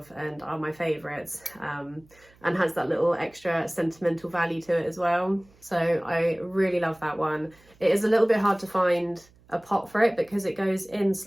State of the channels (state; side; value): noise; right; hum, 29 dB below the sound